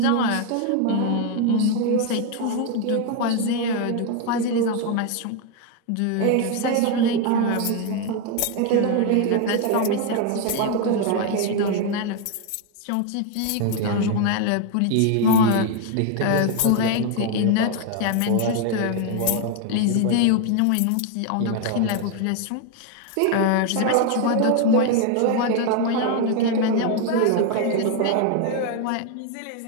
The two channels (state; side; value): different; both; correlation 0.01